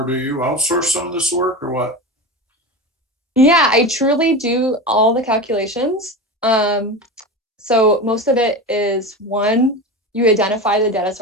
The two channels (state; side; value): normal; both; correlation 0.25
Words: do you outsource some of this work, or what? Yeah, I truly do all the calculations. So most of it is, one, you identify the data